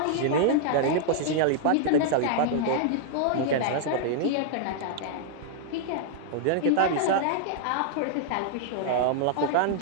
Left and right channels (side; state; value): both; different; correlation -0.01